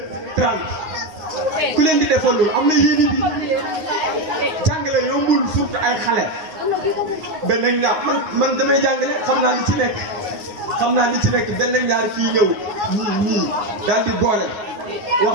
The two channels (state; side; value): late; left; 9.6 ms